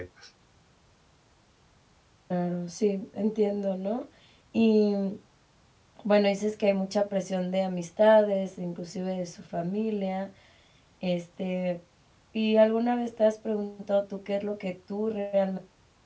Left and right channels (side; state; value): both; identical; correlation 1.00